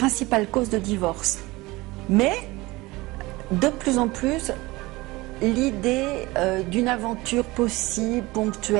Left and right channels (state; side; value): quieter; left; 21.1 dB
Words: cause de divorce. Mais, de plus en plus, l'idée d'une aventure possible,